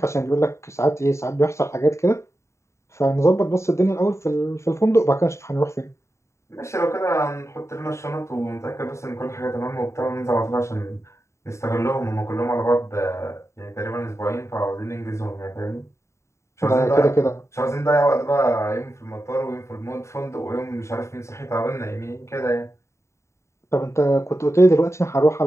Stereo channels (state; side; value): late; right; 0.14 ms